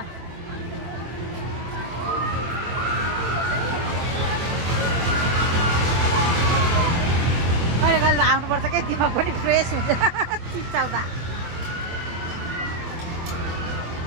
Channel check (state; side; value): late; left; 24 ms